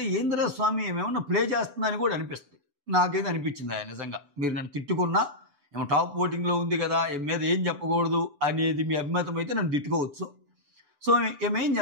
ఏంద్రా స్వామి ఏమేమన్నా ప్లే చేస్తుందని కూడా అనిపిస్తుంది. నాకైతే అనిపించింది ఆయన నిజంగా. మీరు నన్ను తిట్టుకున్నా, ఏమో టాప్ ఓటింగ్లో ఉంది కదా, మీద ఏం చెప్పకూడదు అనేది మీ అభిమతం అయితే నన్ను తిట్టుకోవచ్చు. సో ఏమేం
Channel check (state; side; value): late; left; 6.9 ms